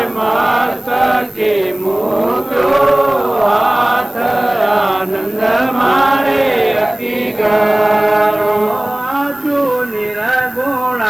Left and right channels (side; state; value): left; noise; hiss, 27 dB below the sound